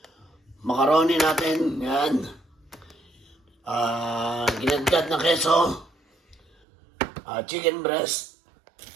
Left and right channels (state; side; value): drops out; left; at 6.5 s